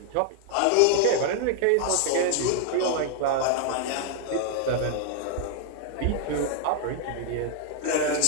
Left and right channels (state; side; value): different; both; correlation 0.00